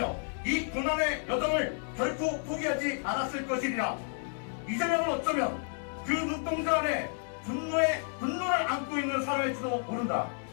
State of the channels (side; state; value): right; silent; 57 dB below the other